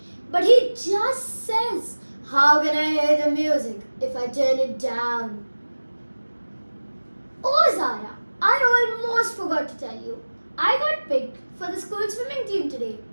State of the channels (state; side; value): inverted; both; correlation -1.00